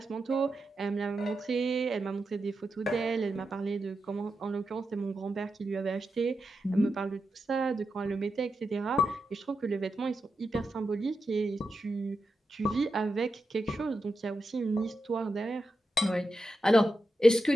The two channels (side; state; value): both; normal; correlation 0.88